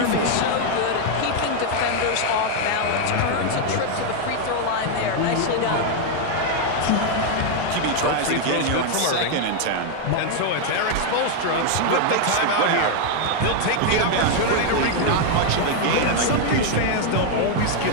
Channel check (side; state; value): both; different; correlation 0.01